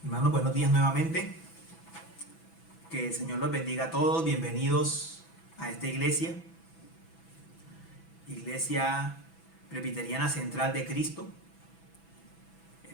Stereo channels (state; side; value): late; right; 6.1 ms